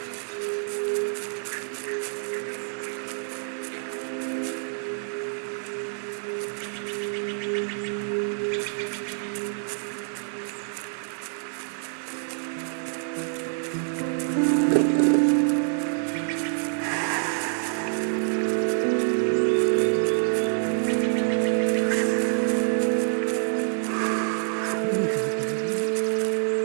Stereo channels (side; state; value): left; silent; 60 dB below the other